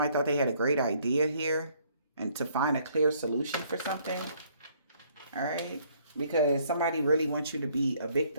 thought they had a great idea here and to find a clear solution for something. All right? Because somebody really wants you to be a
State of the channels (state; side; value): inverted; both; correlation -0.64